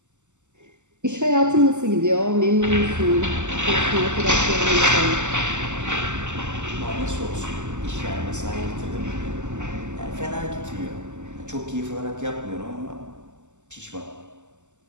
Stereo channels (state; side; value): late; left; 0.84 ms